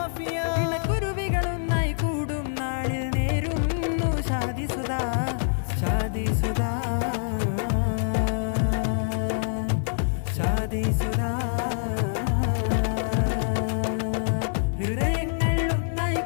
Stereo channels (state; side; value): silent; right; digital silence